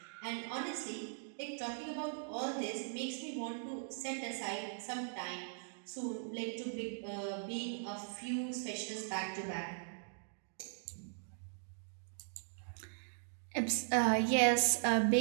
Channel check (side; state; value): left; silent; digital silence